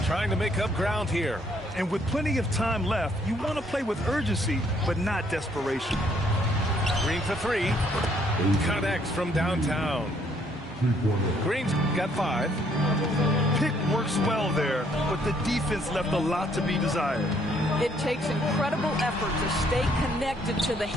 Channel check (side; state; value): both; normal; correlation 0.67